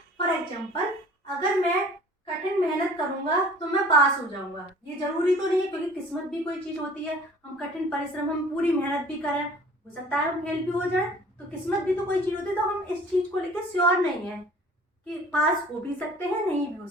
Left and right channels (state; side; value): normal; both; correlation 0.49